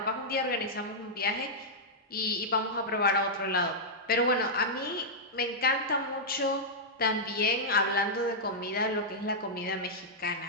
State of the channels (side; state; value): both; normal; correlation -0.08